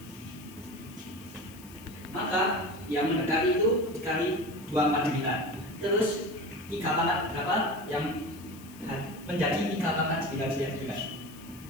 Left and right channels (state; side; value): noise; left; hiss, 21 dB below the sound